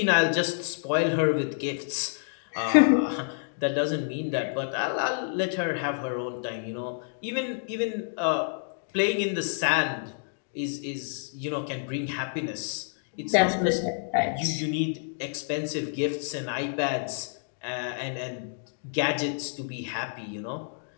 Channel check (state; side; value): silent; right; digital silence